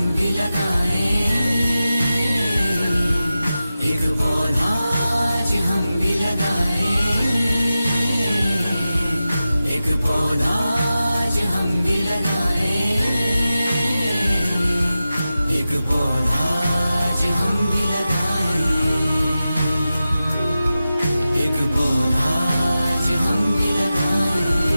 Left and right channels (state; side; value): inverted; both; correlation -0.93